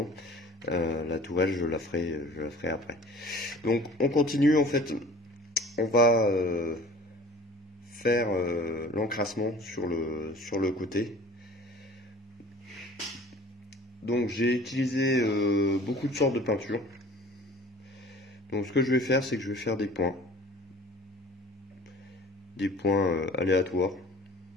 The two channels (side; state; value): both; normal; correlation 0.45